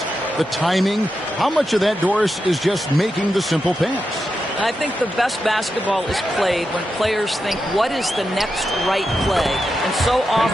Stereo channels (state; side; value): normal; both; correlation 0.88